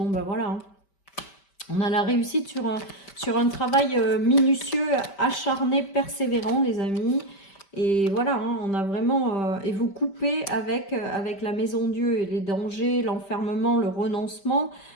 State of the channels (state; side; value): late; right; 5.1 ms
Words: ben voilà, hein. On a la réussite sur un travail minutieux, acharné, persévérant, les amis. Et voilà, hein, on a vraiment... et vous coupez avec la maison Dieu et les dangers, l'enfermement, le renoncement.